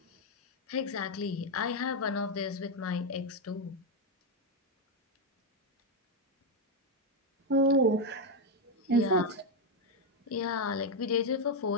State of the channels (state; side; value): normal; both; correlation 0.04